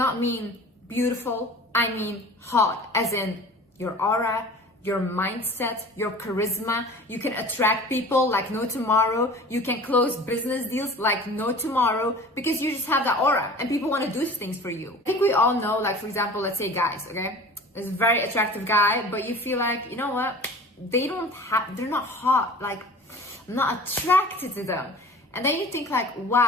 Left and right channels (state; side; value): normal; both; correlation 0.41